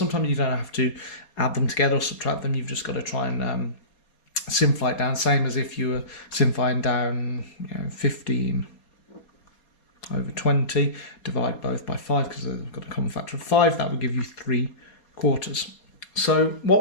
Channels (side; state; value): right; late; 4.3 ms